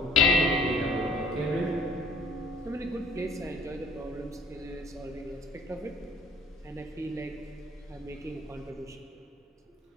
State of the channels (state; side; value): normal; both; correlation 0.54